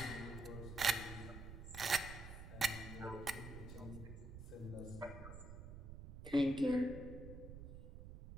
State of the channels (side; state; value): right; noise; rumble, 10 dB below the sound